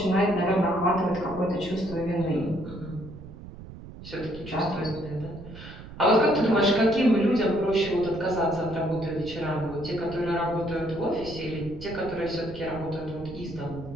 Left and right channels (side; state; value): right; noise; rumble, 14 dB below the sound